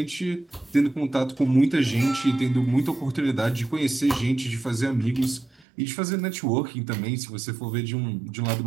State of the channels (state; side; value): drops out; left; at 5.6 s